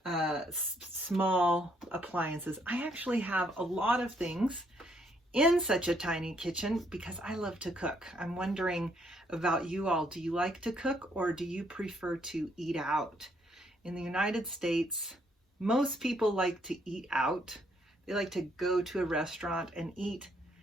small appliances. I actually have a lot of things in such a tiny kitchen because I love to cook. I'm wondering about you all. Do you like to cook or do you prefer to eat out? In the United States, most people like to eat out. They like to go to a restaurant and eat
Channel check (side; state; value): both; normal; correlation 0.70